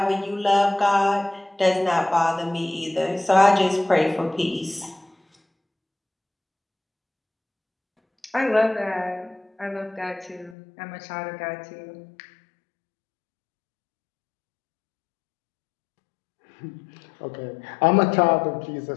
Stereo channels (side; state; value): right; drops out; at 10.6 s